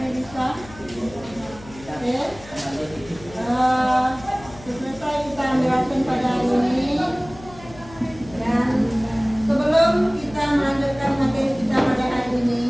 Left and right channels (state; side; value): noise; left; hum, 19 dB below the sound